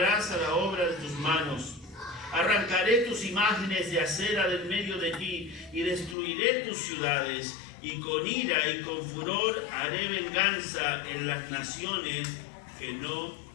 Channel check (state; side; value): drops out; right; at 6.2 s